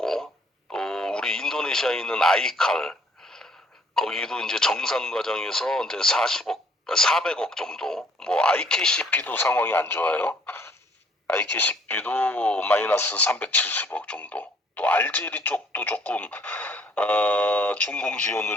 또 우리 인도네시아에 있는 아이칼 거기도 이제 정산 과정에서 이제 400억 정도, 뭐 IKCP도 상황이 안 좋아요. IKCP도 마이너스 370억 정도. 또 알제리 쪽도 조금 준공 지원을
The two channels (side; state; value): both; normal; correlation 0.62